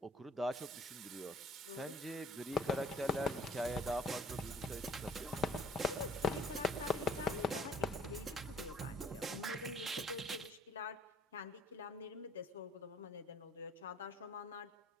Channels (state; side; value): normal; both; correlation 0.57